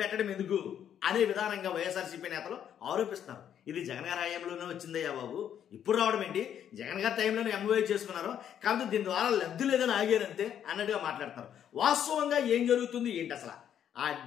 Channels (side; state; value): right; quieter; 9.5 dB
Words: ఎందుకు అనే విధానంగా వైఎస్ఆర్సీపీ నేతలు ఆరోపిస్తున్నారు. ఇది జగన్ గారి హయాంలోనే వచ్చిందయ్యా బాబు, ఇప్పుడు రావడం ఏంటి? జగన్ గారి టైంలోనే ఎంఓయూ చేసుకున్నారు, కాబట్టి దీని ద్వారా లబ్ధి లేదని ఆగారంతే అన్నట్టుగా మాట్లాడతారు. వాస్తవంగా ఏం జరుగుతుంది ఏంటి అసలు?